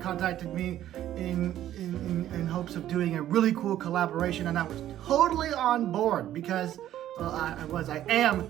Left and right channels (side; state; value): left; quieter; 12.4 dB